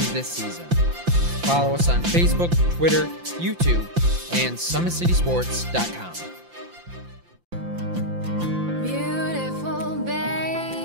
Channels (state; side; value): late; left; 5.8 ms